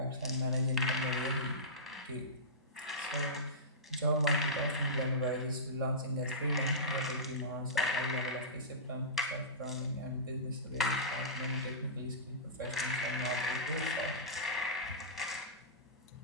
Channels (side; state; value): both; normal; correlation -0.20